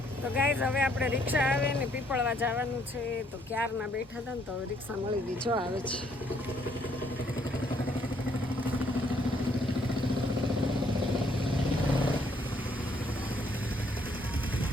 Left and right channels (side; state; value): both; normal; correlation 0.68